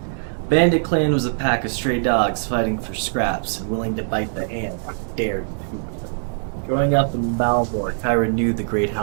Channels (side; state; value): left; silent; 64 dB below the other